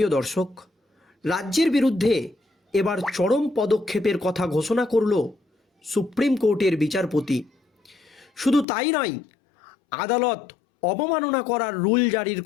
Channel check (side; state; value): right; drops out; at 8.7 s